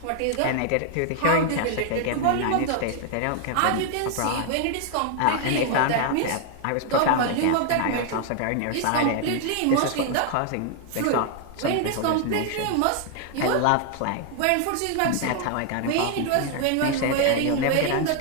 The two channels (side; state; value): both; different; correlation 0.00